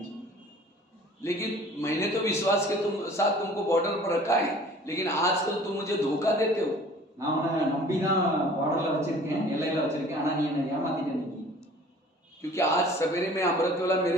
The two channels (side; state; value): both; normal; correlation 0.48